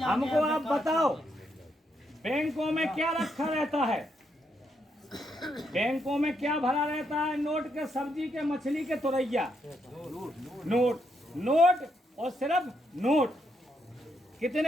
आप बताओ, बैंकों में क्या रखा रहता है? बैंकों में क्या भरा रहता है? नोट के, सब्जी के, मछली के, तुरैया। नोट, नोट और सिर्फ नोट।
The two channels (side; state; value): both; normal; correlation 0.78